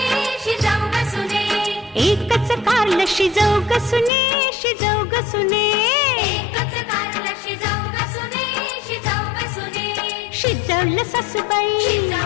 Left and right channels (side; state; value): right; drops out; at 4.1 s